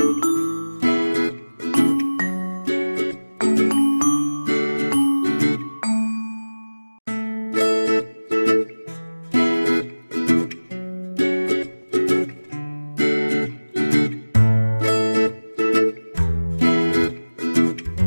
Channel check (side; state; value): both; inverted; correlation -1.00